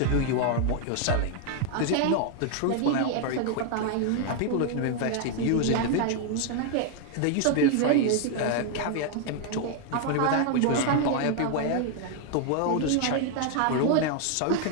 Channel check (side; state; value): both; different; correlation 0.00